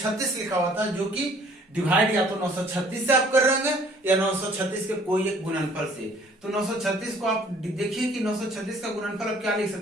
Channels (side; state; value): both; normal; correlation 0.56